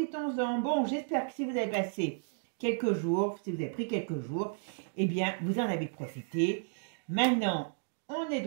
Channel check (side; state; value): left; silent; digital silence